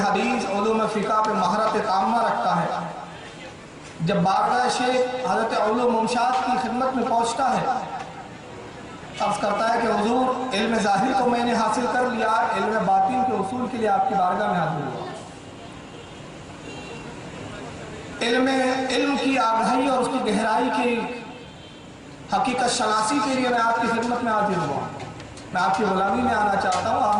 علوم فقہ پہ مہارت تامہ رکھتا ہے. جب بارگاہ شیخ حضرت علوم ممشاد کی خدمت میں پہنچتا ہے، عرض کرتا ہے کہ حضور علم ظاہر کو میں نے حاصل کر لیا، علم باطن کے اصول کے لیے آپ کی بارگاہ میں حاضر ہوا. علم کی آگاہی اور اس کی گہرائی کی حقیقت شناسی کے لیے میں آپ کی خدمت میں حاضر ہوا. میں آپ کی غلامی میں آنا چاہتا ہوں، آپ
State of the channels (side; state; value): both; identical; correlation 1.00